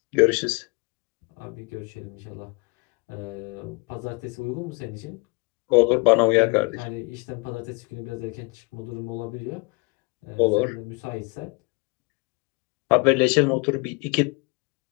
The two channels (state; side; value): quieter; right; 29.2 dB